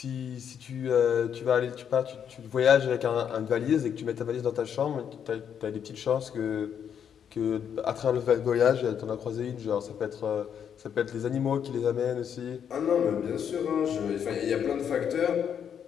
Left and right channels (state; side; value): quieter; right; 8.2 dB